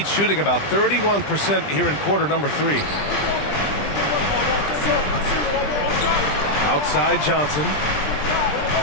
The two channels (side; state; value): right; late; 20 ms